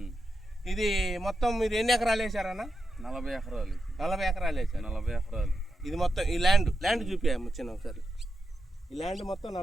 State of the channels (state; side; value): normal; both; correlation 0.87